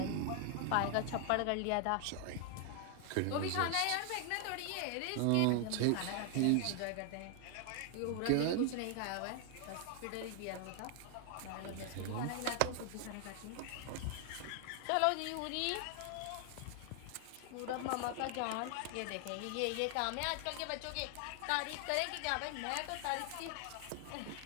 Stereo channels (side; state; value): both; different; correlation 0.00